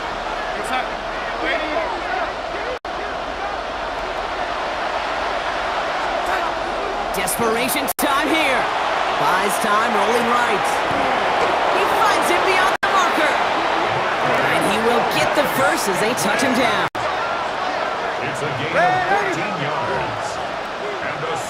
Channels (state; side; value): identical; both; correlation 1.00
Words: Desperation time here. Buys time, rolling right. He finds him beyond the marker. And he will get the first as they touch him down. it's a gain of 14 yards. And the